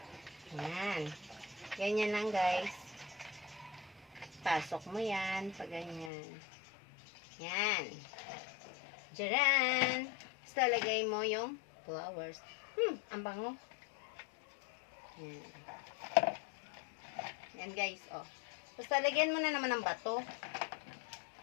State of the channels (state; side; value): drops out; right; at 6.1 s